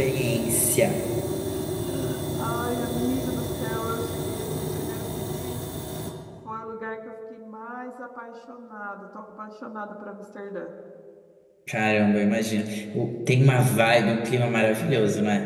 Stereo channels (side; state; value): both; identical; correlation 1.00